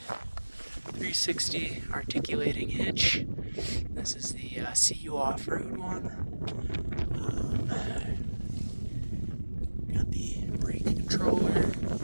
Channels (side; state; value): both; inverted; correlation -1.00